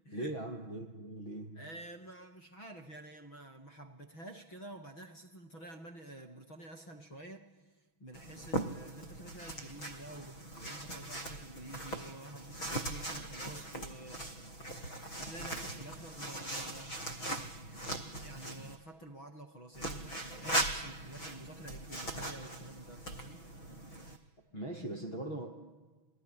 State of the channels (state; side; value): late; right; 6.2 ms